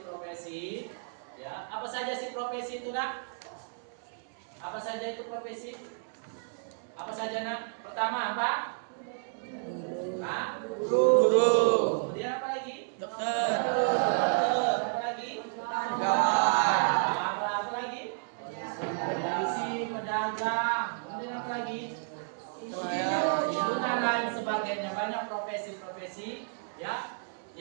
Ya. Apa saja sih profesi itu, Nak? Apa saja itu profesi? Apa saja, Nak? Pertama apa? Guru. Kemudian apa lagi? Dokter. Apa lagi? Pegawai. Apa lagi? Polisi, pedagang. Kemudian apa lagi? Itu dan lain sebagainya. Banyak profesi-profesi, ya,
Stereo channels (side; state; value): left; silent; digital silence